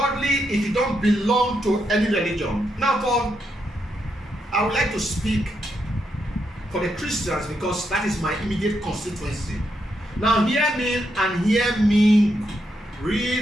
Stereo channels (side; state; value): both; normal; correlation 0.81